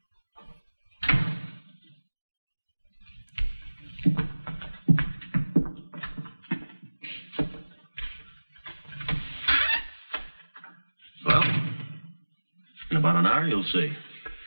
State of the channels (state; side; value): inverted; both; correlation -1.00